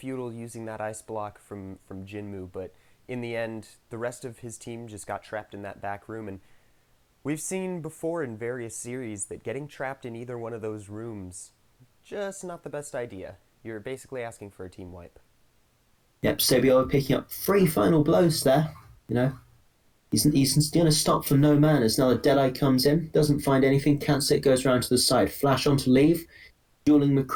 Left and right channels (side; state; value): both; identical; correlation 1.00